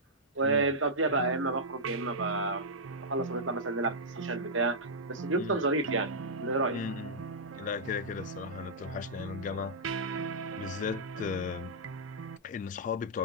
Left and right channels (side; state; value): both; normal; correlation -0.11